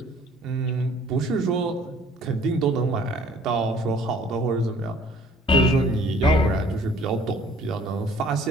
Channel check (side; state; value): both; normal; correlation 0.55